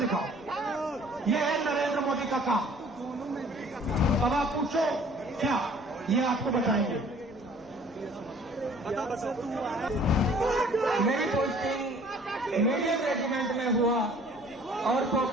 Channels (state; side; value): normal; both; correlation 0.54